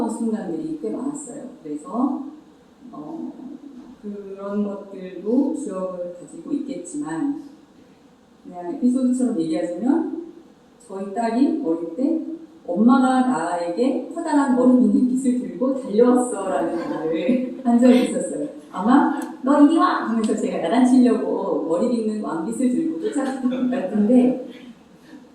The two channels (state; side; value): identical; both; correlation 1.00